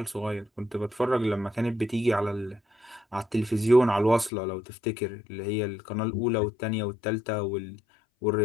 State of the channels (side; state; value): right; drops out; at 4.3 s